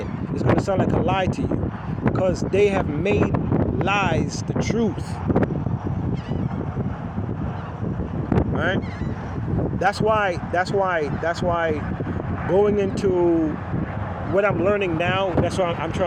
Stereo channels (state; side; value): identical; both; correlation 1.00